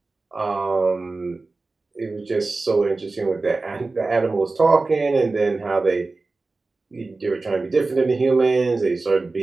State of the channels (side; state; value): left; quieter; 3.6 dB